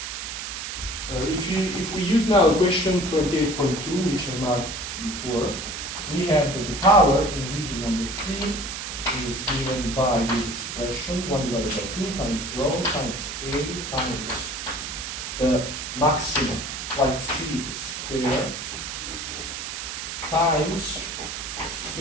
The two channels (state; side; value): noise; right; hiss, 6 dB below the sound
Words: If we use now equation 28.2, which I marked before, we have that the power in region number 3 is given by this expression, 1 divided by 2 times rho times A times the maximum flight speed square times